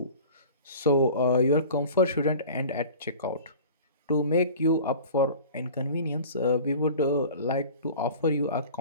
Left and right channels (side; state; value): both; inverted; correlation -0.41